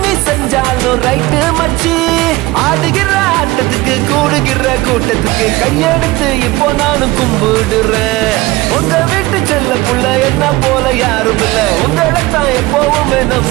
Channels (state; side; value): quieter; left; 20.1 dB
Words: நீ செஞ்சாலும் ரைட்டு மச்சி ஆடுகிற ஆட்டத்துக்கு கூடுகிற கூட்டத்துக்கு கையெடுத்து இப்போ நானும் கும்பிடுறேன் உங்க வீட்டு செல்ல புள்ள என்ன போல யாரும் இல்ல உங்களைத்தான் எப்பவுமே